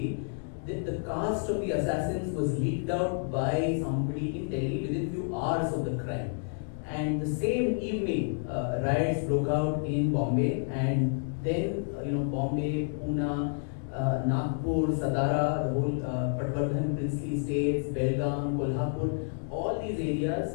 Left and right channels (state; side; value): silent; right; digital silence